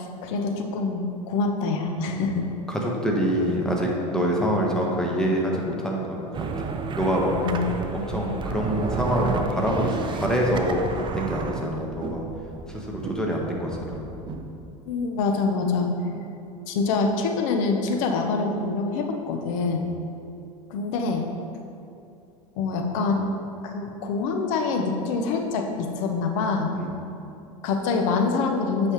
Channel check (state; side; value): normal; both; correlation 0.24